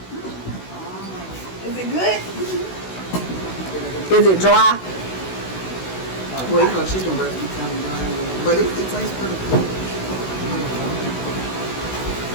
Is it good? Is it dry? Well, you know, chicken breast be kind of dry, but it tastes pretty good.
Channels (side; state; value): right; late; 16 ms